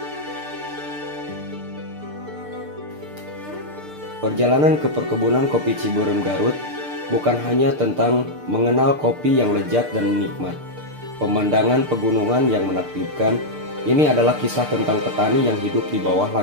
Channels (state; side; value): late; left; 6.7 ms